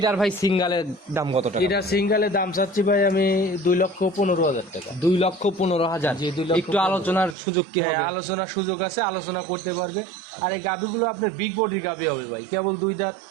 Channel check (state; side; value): drops out; left; at 7.4 s